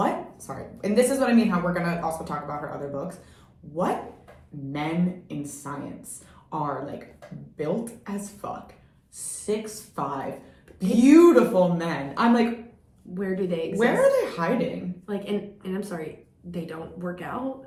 and this is what I mean, how we're going to also talk about her other books. What men in science are, like, built as fuck, 6'5", beautiful men. I'm like, where do they exist? Where are they hiding? Like, and I'm sorry, they don't work out?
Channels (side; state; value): both; identical; correlation 1.00